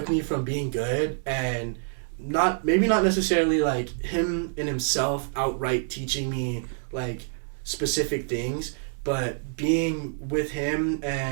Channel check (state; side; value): silent; left; 60 dB below the other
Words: me from being good and maybe not necessarily like him in himself outright teaching me like specific things, but being with him